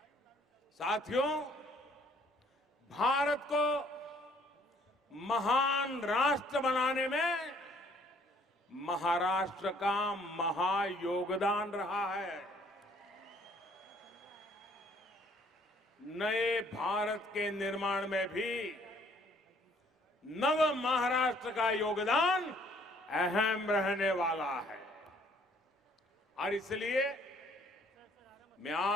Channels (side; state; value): both; normal; correlation 0.61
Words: साथियों, भारत को महान राष्ट्र बनाने में महाराष्ट्र का महायोगदान रहा है। नए भारत के निर्माण में भी नव महाराष्ट्र का योगदान अहम रहने वाला है। और इसलिए मैं